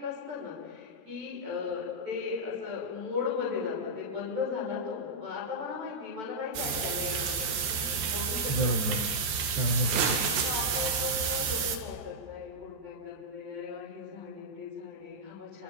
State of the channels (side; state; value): left; late; 14 ms